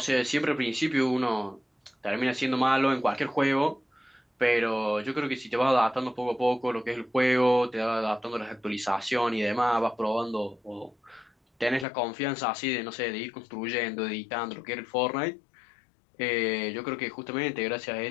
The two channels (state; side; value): drops out; right; at 11.9 s